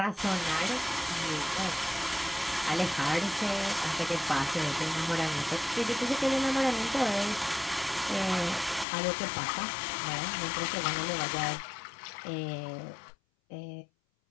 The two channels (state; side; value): drops out; right; at 8.8 s